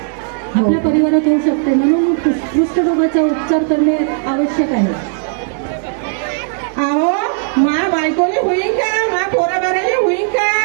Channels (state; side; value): silent; left; 61 dB below the other